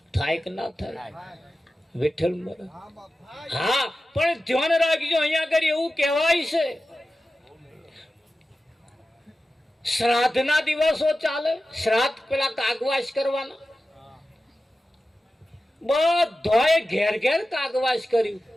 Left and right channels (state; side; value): normal; both; correlation 0.94